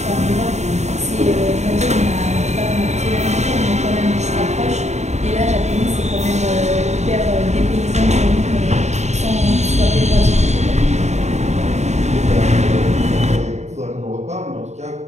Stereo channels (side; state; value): left; late; 0.33 ms